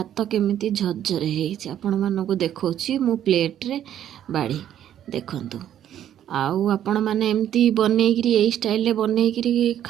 केमिति झरझर हे आपण मानको देखौछि मो प्लेट रे बाड़ी देखंतु आउ आपण माने एमती बनेगिरी एई स्टाइल रे बनेगिरी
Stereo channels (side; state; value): left; quieter; 10.8 dB